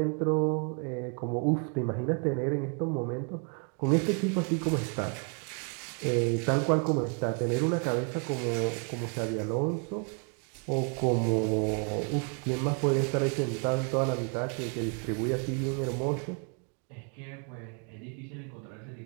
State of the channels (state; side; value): quieter; left; 39.3 dB